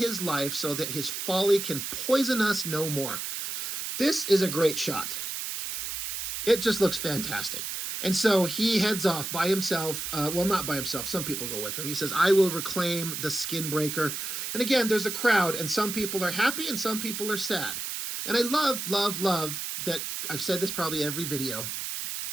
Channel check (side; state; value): right; noise; hiss, 4 dB below the sound